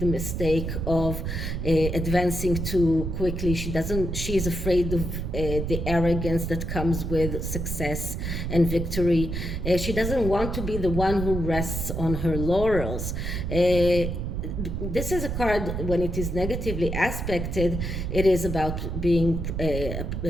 mistake of advancing too quickly. She is afraid of the arrogance that comes with success and victory. She doesn't want to be the one who rests on her laurels. This is a card, when it is negatively aspected, it is about being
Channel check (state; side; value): noise; right; rumble, 3 dB below the sound